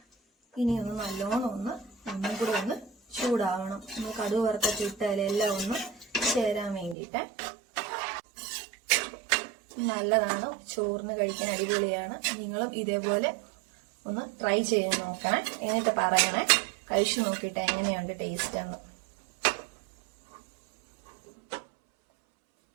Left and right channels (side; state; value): left; drops out; at 7.0 s